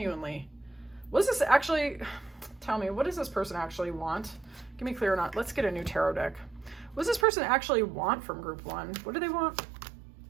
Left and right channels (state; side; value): drops out; left; at 7.2 s